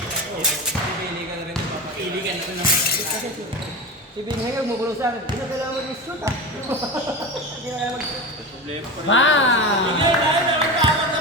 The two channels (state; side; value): normal; both; correlation 0.25